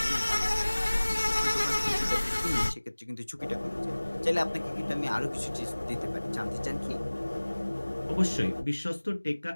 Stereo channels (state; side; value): inverted; both; correlation -1.00